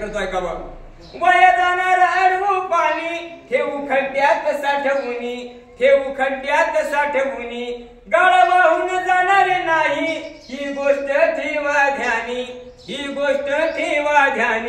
ऐकावं. वाया जाणार अडवू पाणी ठेवू खड्ड्यात साठवूनी ठेवू खड्ड्यात साठवूनी गाळ वाहून जाणारे नाही ही गोष्ट ठेवा ध्यानी ही गोष्ट ठेवा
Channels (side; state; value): both; identical; correlation 1.00